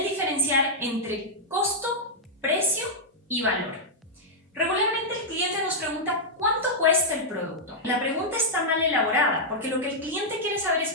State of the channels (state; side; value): normal; both; correlation -0.06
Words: diferenciar entre costo, precio y valor. Regularmente el cliente nos pregunta ¿cuánto cuesta el producto? La pregunta está mal elaborada porque lo que el cliente quiere saber